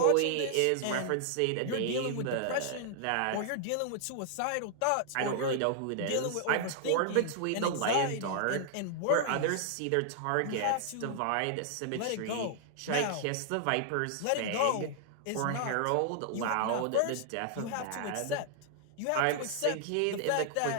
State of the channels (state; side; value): different; both; correlation -0.01